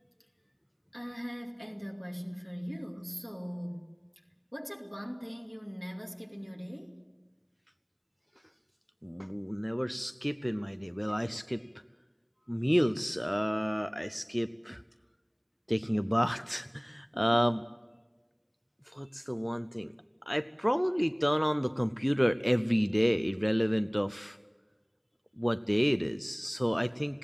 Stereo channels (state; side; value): identical; both; correlation 1.00